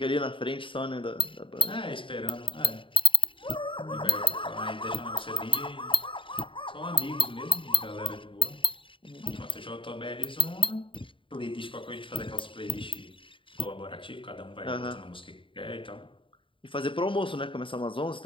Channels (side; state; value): right; late; 0.25 ms